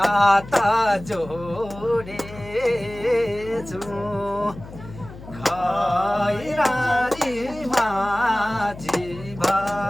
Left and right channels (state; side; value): noise; left; hum, 15 dB below the sound